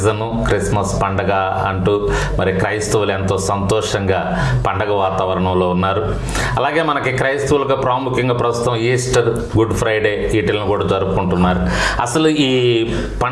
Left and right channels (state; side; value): identical; both; correlation 1.00